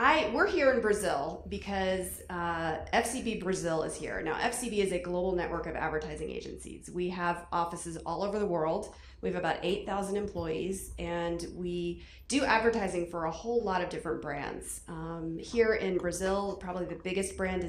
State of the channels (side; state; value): both; identical; correlation 1.00